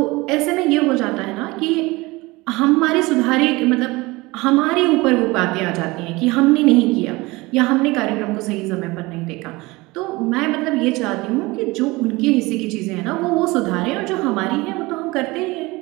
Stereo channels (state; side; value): quieter; left; 22.3 dB